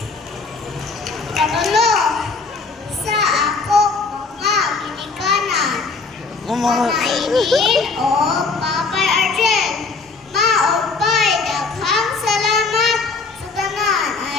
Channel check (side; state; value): right; quieter; 4.3 dB